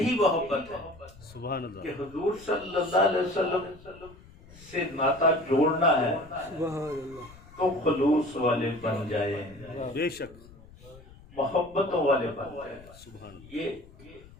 محبت ہے سبحان کہ اللہ، حضور صلی اللہ علیہ وسلم سے ناطا جوڑنا ہے تو خلوص والے بن جائیں، بے شک، محبتوں والے بن جائیں۔ سبحان اللہ، یہ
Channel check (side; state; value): left; noise; rumble, 22 dB below the sound